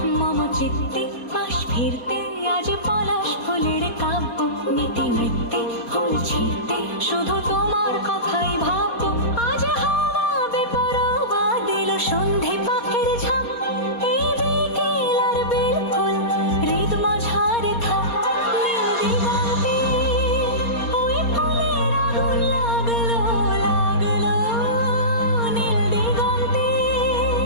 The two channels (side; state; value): right; late; 4.3 ms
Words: মম চিত্তে পাশ ফিরতে আজ পলাশ ফুলের কাব্য, নীতি নৃত্যে ফুল ছিঁড়তে শুধু তোমার কথাই ভাববো। আজ হাওয়া বেপরোয়া দিল সন্ধে পাখির ঝাঁপ, এই বিকেল আর বেলফুল হৃদ মাঝারে থাক। নীল দিগন্তে ওই ফুলের আগুন লাগলো লাগলো, নীল দিগন্তে